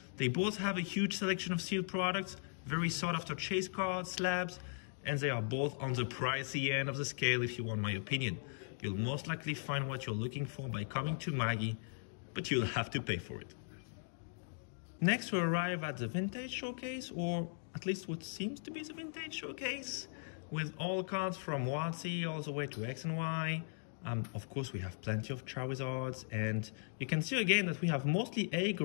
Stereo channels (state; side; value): silent; right; digital silence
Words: they both have a huge selection of sealed products, very sought after chase cards, slabs, and they are both on the pricey end of the scale if you want my opinion. You'll most likely find what you're looking for by coming to Magi, but you'll have to pay for it. Next we arrive at the Vintage Showcase, or at least what seems to be the Vintage Showcase, with all cards from WotC all the way to X and Y. Of course we have plenty of Charizards, and you can see again that we have mostly